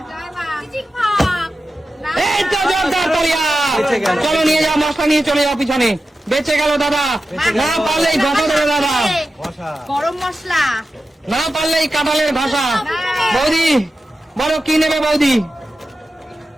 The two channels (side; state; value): both; normal; correlation 0.92